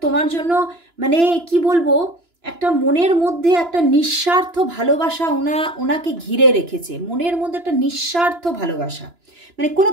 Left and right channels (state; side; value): late; left; 2.9 ms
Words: তোমার জন্য মানে কি বলবো, একটা মনের মধ্যে একটা নিঃস্বার্থ ভালোবাসা ওনাকে ঘিরে রেখেছে, মনের মধ্যে একটা নিঃস্বার্থ ভালোবাসা, মানে কোনো